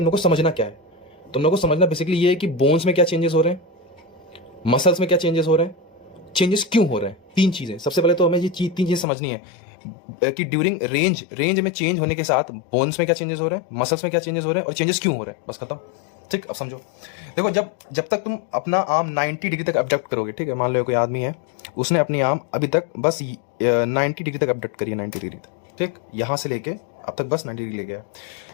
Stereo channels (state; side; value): drops out; right; at 9.1 s